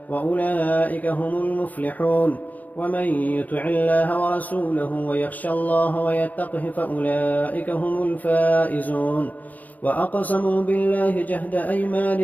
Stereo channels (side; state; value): right; late; 0.079 ms